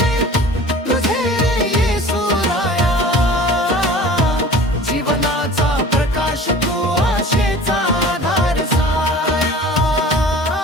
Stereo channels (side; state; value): both; normal; correlation 0.42